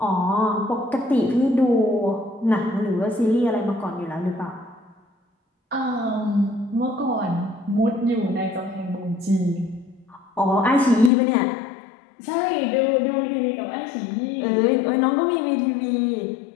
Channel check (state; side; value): drops out; right; at 11.1 s